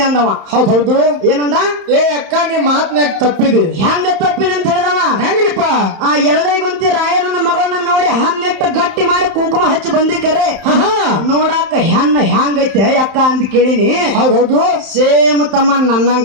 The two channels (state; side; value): late; left; 31 ms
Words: ಅಂದವ. ಹೌದು. ಏನಂದ? ಏ ಅಕ್ಕ ನೀ ಮಾತ್ನಾಗ ತಪ್ಪಿದೆ. ಹೆಂಗ ತಪ್ಪಿನ ಅಂತ ಹೇಳಿದವ. ಹೆಂಗ್ರಿಪ್ಪ? ಆ ಎರಡೇಗುಂತಿ ರಾಯಣ್ಣನ ಮಗಳನ್ನ ನೋಡಿ ಹನ್ನೆಟ್ಟು ಗಟ್ಟಿ ಮಾಡಿ ಕುಂಕುಮ ಹಚ್ಚಿ ಬಂದಿಕರೆ ನೋಡಾಕ ಹೆಣ್ಣ ಹೆಂಗೈತೆ ಅಕ್ಕ ಅಂತ ಕೇಳಿನಿ. ಹೌದು. ಸೇಮ್ ತಮ್ಮ